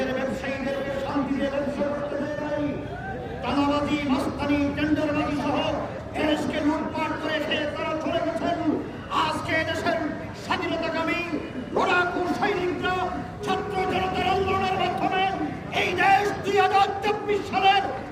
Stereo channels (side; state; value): both; identical; correlation 1.00